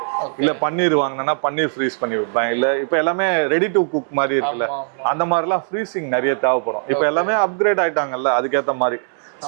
இல்ல பன்னீர் வாங்கினா பன்னீர் ஃப்ரீஸ் பண்ணி வைப்பேன். இல்ல இப்ப எல்லாமே ரெடி டு குக் மாதிரி இருக்குல்ல, அந்த மாதிரி எல்லாம் ஃப்ரீசிங் நிறைய தேவைப்படும். இப்ப எல்லாமே அப்கிரேட் ஆயிட்டாங்கல்ல, அதுக்கேத்த மாதிரி.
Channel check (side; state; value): left; silent; digital silence